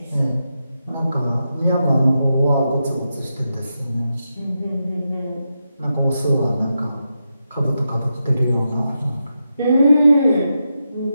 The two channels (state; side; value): inverted; both; correlation -0.87